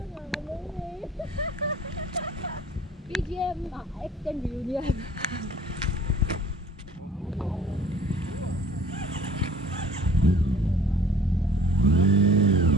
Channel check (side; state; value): both; normal; correlation 0.50